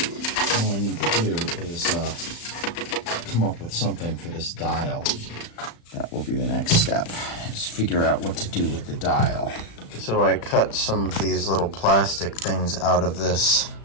All I need to do is come up with something for this dial. That will be the next step. Just figure out what to do with the dial. So I cut some of these little plastic things out of this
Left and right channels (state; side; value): late; right; 35 ms